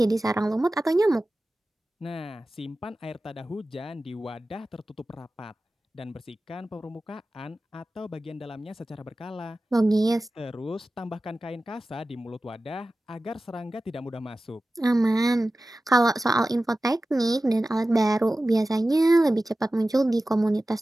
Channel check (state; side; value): normal; both; correlation 0.95